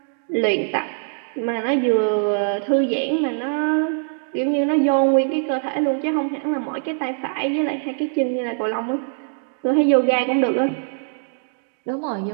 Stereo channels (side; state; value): left; silent; digital silence